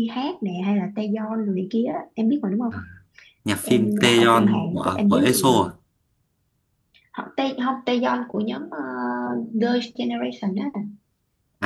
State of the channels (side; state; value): both; identical; correlation 1.00